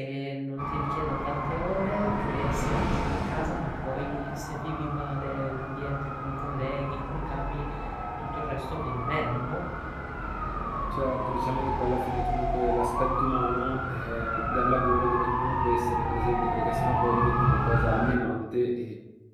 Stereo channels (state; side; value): identical; both; correlation 1.00